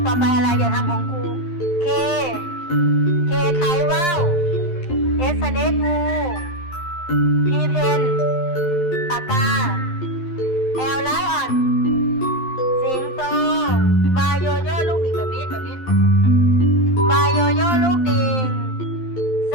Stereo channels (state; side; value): late; right; 12 ms